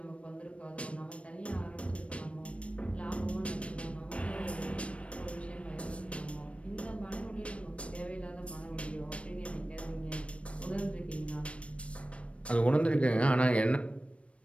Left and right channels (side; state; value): right; late; 0.062 ms